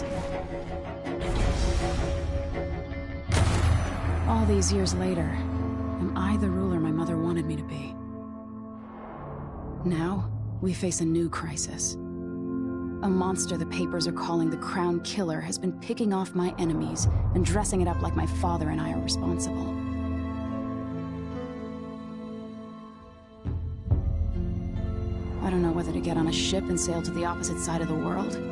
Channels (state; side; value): identical; both; correlation 1.00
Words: All these years later, am I the ruler my mother wanted me to be? Now, we face a new crisis. A monster the papers are calling the Crown Killer has been picking off my enemies and dressing it up like my father and I are responsible. I don't know whether to get on a ship and sail to the opposite side of the world,